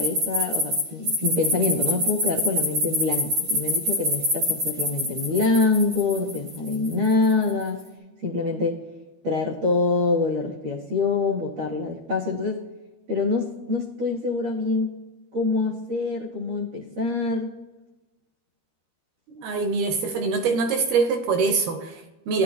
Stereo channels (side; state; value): left; late; 13 ms